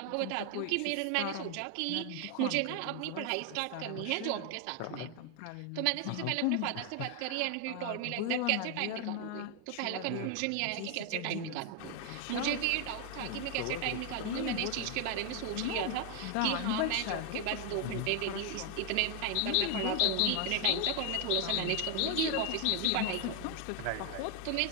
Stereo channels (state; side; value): different; both; correlation 0.00